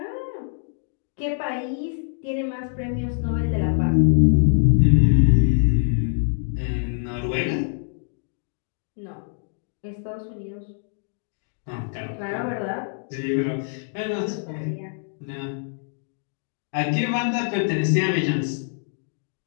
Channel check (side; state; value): right; silent; digital silence